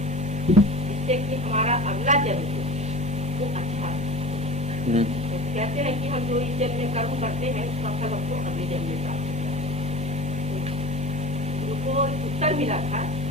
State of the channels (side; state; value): both; normal; correlation 0.36